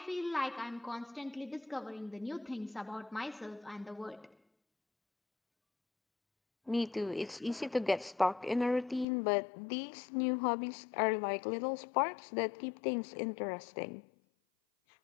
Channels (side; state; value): right; drops out; at 9.1 s